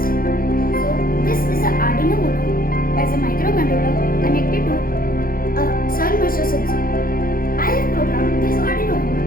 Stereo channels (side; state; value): right; late; 0.42 ms